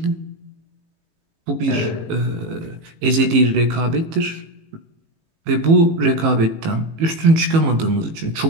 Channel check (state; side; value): late; left; 18 ms